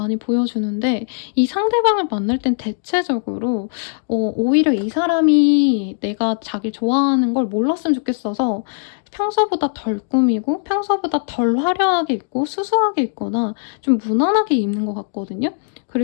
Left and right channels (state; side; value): silent; right; digital silence